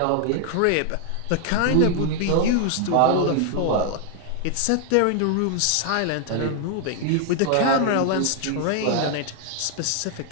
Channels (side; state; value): both; different; correlation 0.00